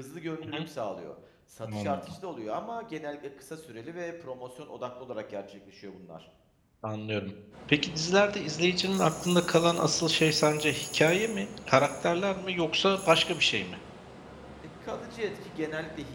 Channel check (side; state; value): both; identical; correlation 1.00